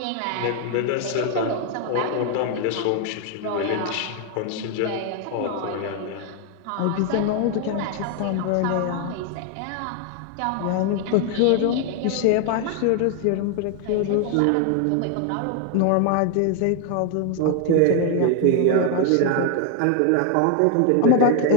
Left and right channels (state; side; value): different; both; correlation 0.01